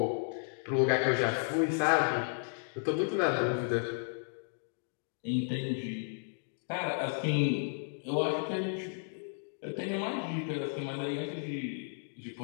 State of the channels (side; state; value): right; silent; digital silence